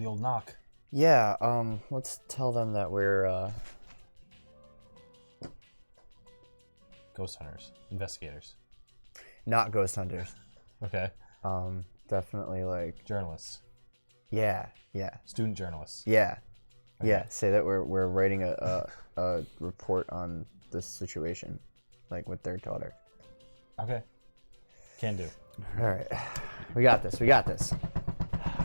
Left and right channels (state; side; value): inverted; both; correlation -1.00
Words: old knock. Yeah. Let's tell them that we're Ghost hunters, investigators. not ghost hunters. Okay. Definitely like. Journalists, Yeah. student journalists. Yeah. Okay. Yeah. Say that we're writing a report on this situation, like with their daughter. Okay. Can do. All right. We got this.